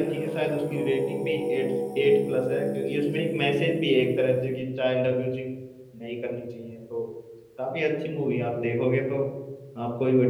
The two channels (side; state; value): both; identical; correlation 1.00